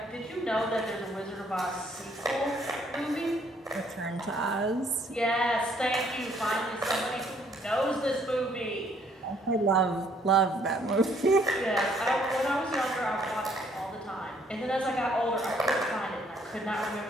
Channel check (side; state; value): both; normal; correlation 0.65